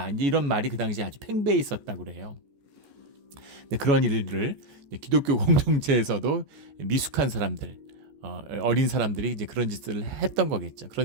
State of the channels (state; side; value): late; left; 14 ms